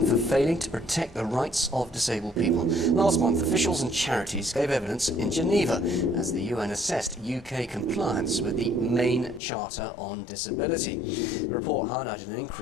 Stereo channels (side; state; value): right; drops out; at 9.4 s